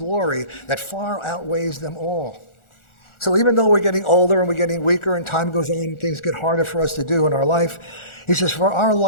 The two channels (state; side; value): late; right; 1.4 ms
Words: that far outweighs them all. So even though we're getting older and we're getting weaker and time goes on and things get harder for us to do in our life, he says, for our